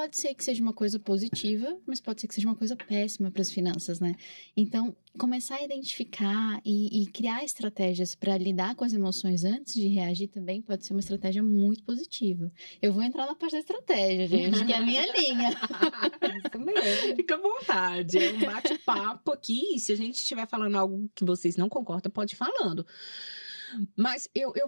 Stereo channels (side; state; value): both; inverted; correlation -1.00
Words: ser que seja uma coisa positiva, mas pode ser que seja uma coisa péssima para as finanças, né? Então, começar a identificar e criar estratégias para lidar com as emoções antes de reagir também pode ser uma estratégia muito positiva. Eu vou entrar na parte da estratégia, gente, que é a minha linha. Isso mesmo. Fica à vontade, é um bate-papo aqui. E se a gente estiver falando algo que vocês não concordam, pode ir falando. Mas